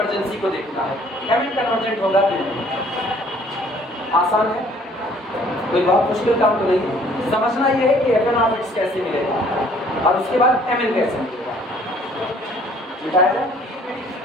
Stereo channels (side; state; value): both; normal; correlation 0.58